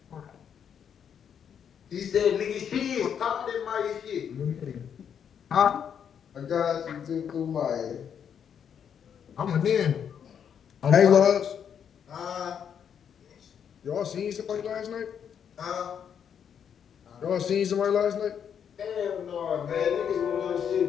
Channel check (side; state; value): right; quieter; 8.1 dB